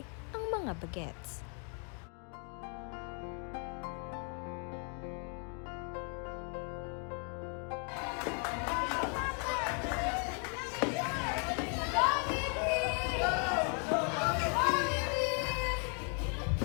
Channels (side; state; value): right; quieter; 40.0 dB